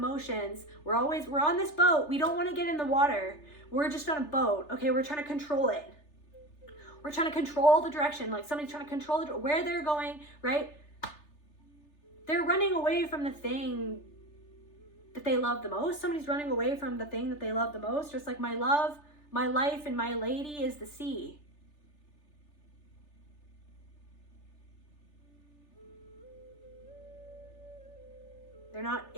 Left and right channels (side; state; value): right; late; 3.4 ms